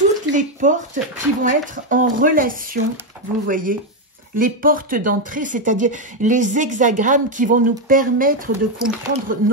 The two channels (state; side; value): normal; both; correlation 0.05